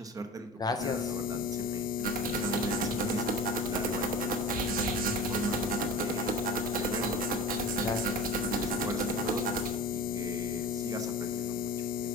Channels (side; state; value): both; normal; correlation 0.35